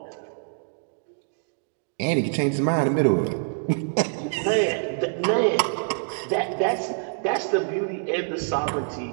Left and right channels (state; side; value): silent; left; digital silence